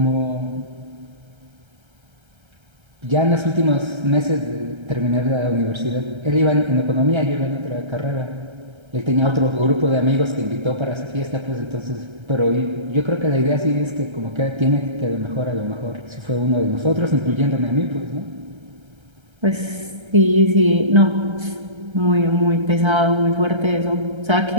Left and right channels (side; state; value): left; late; 1.3 ms